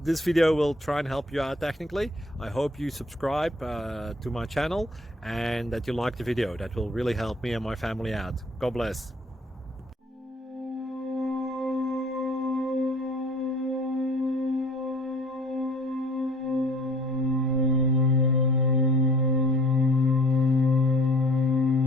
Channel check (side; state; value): both; normal; correlation 0.53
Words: this video will try and help you out technically. I hope you subscribe to my channel and that you like the video. That will really help me and my family out. God bless.